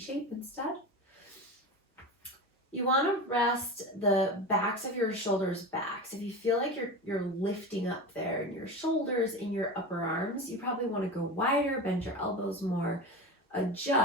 instead. You want to rest the backs of your shoulders back. So if you feel like you're lifting up there in your shoulders, in your upper arms, you probably want to go wider, bend your elbows more,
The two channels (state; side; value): normal; both; correlation 0.27